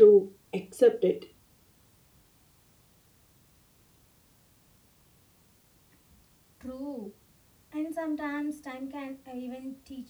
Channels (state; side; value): identical; both; correlation 1.00